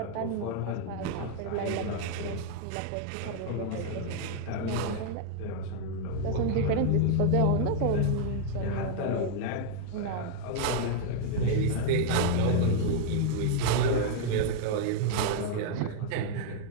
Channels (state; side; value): different; both; correlation 0.00